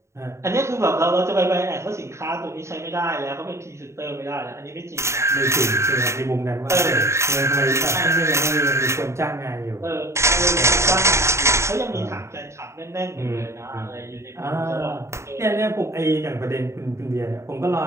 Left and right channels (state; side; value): late; left; 0.14 ms